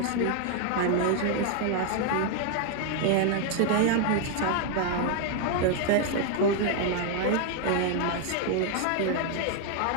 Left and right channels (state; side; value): different; both; correlation 0.00